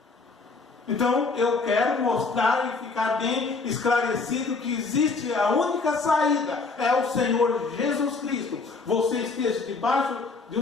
Então eu quero mostrar e ficar bem esclarecido que existe a única saída, é o Senhor Jesus Cristo. Você esteja debaixo de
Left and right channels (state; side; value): quieter; right; 4.1 dB